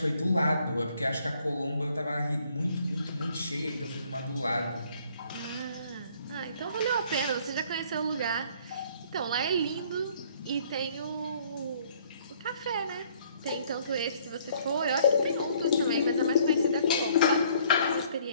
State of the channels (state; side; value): inverted; both; correlation -0.61